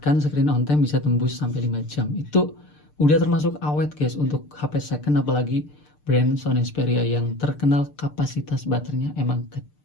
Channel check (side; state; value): right; late; 6.7 ms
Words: screen on time, bisa tembus sampai 5 jam. Itu udah termasuk awet guys untuk HP second, apalagi brand Sony Xperia yang terkenal kapasitas baterainya emang